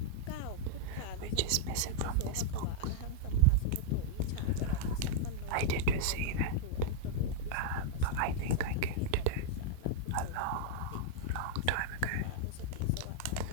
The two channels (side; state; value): both; different; correlation -0.02